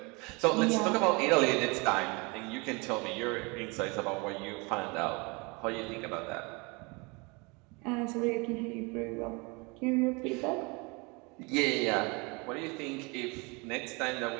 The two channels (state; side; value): quieter; left; 28.5 dB